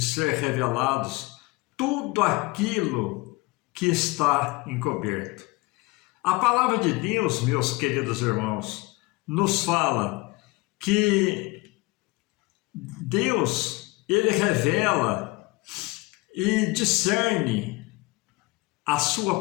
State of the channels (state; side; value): quieter; right; 23.5 dB